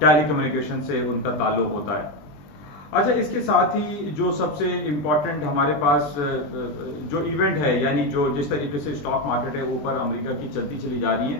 टेलीकम्युनिकेशन से उनका ताल्लुक होता है। अच्छा, इसके साथ ही जो सबसे इम्पॉर्टेंट हमारे पास जो इवेंट है, यानी जो जिस तरीके से स्टॉक मार्केट है ऊपर अमेरिका की चलती चली जा रही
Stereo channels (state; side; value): late; right; 20 ms